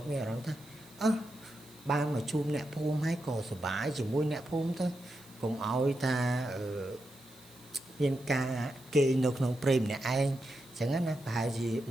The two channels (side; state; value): right; noise; hiss, 24 dB below the sound